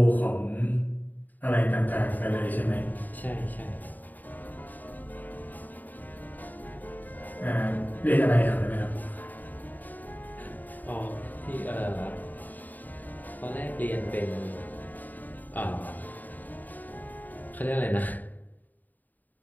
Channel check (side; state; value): right; late; 0.085 ms